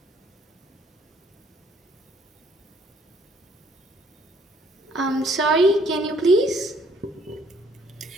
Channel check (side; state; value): both; normal; correlation 0.64